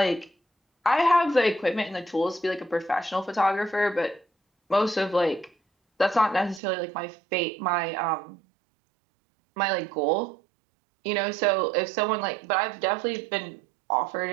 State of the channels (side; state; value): left; drops out; at 6.6 s